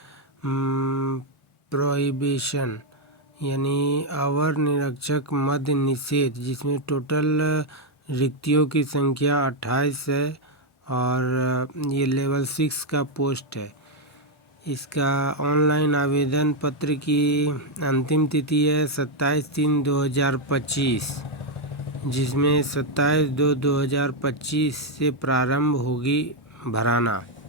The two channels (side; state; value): both; normal; correlation 0.02